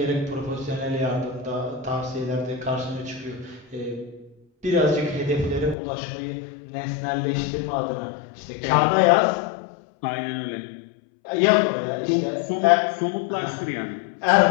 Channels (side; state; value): right; drops out; at 5.8 s